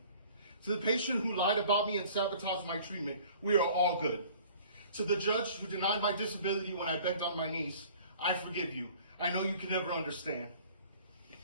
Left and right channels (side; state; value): both; inverted; correlation -0.49